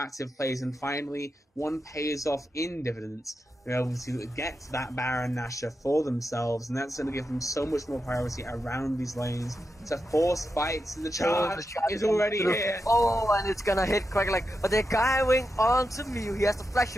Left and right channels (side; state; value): both; normal; correlation 0.88